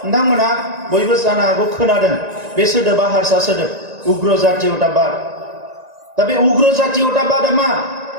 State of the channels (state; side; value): late; left; 1.9 ms